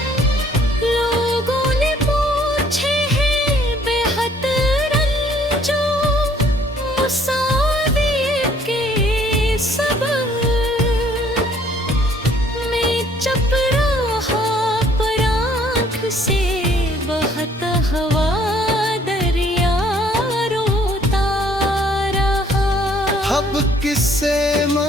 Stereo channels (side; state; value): both; normal; correlation 0.61